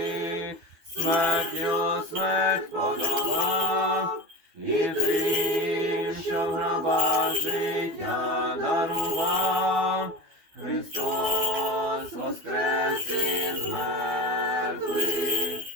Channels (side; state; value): left; late; 12 ms